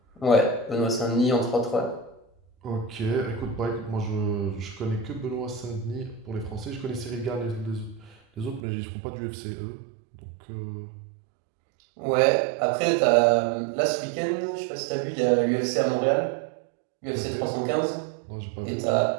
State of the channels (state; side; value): drops out; left; at 8.6 s